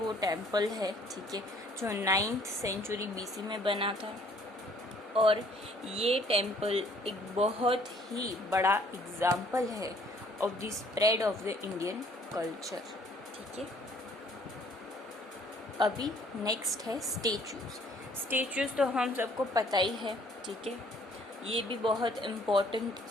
टेम्पल है, ठीक है, जो 9th century BC में बना था, और ये टेम्पल एक बहुत ही बड़ा एग्जाम्पल है of the spread of the Indian culture. ठीक है, अभी नेक्स्ट है स्टेचूज. स्टेचूज तो हम सबको पता ही है. ठीक है, ये भी बहुत इम्पोर्टेंट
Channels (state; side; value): normal; both; correlation 0.59